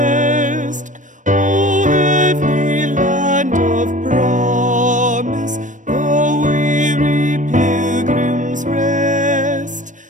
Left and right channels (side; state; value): left; late; 0.37 ms